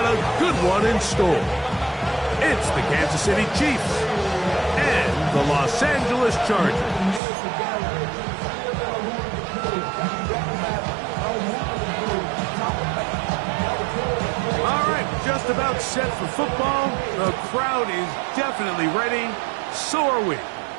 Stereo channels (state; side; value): drops out; left; at 7.2 s